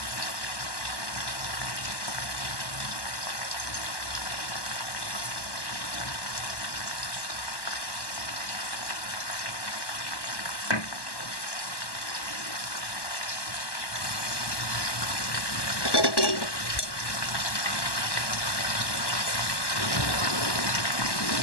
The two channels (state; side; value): late; right; 1.1 ms